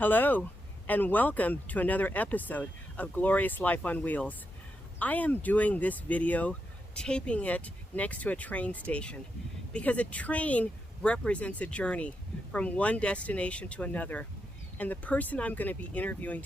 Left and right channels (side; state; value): both; normal; correlation 0.84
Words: and welcome to another episode of Glorious Life on Wheels. I am doing this video, taping it next to a train station, because a train represents a journey from one destination to another. And the person I'm going to be interviewing